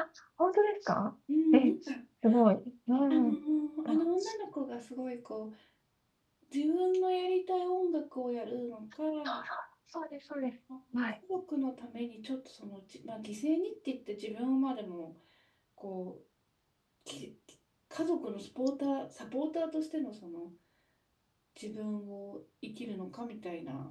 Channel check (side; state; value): both; identical; correlation 1.00